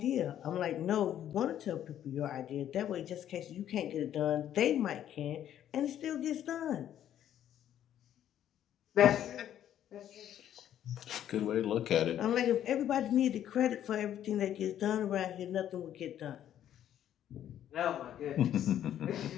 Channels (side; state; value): right; quieter; 10.9 dB